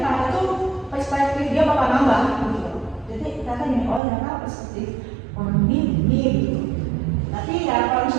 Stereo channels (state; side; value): drops out; left; at 4.0 s